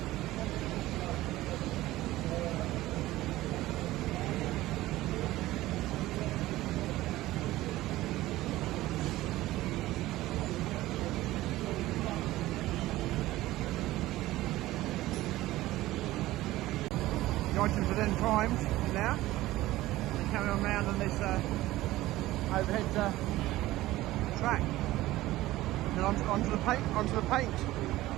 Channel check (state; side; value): quieter; left; 16.8 dB